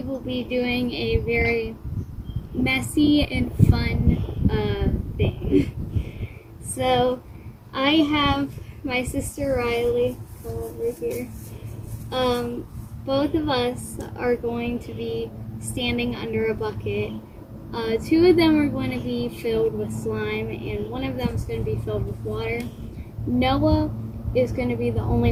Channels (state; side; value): identical; both; correlation 1.00